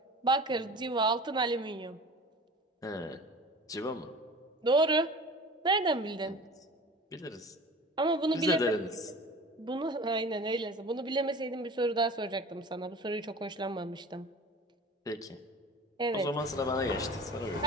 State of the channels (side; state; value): both; normal; correlation 0.40